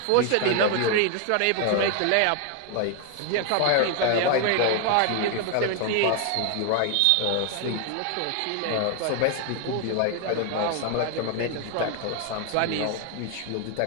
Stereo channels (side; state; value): both; different; correlation 0.01